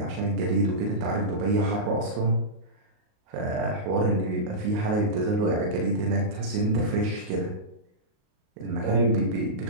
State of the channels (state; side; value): late; left; 38 ms